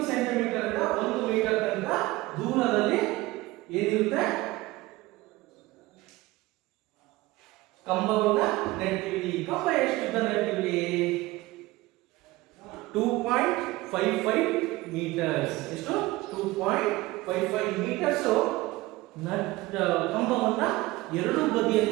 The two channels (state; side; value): quieter; left; 19.6 dB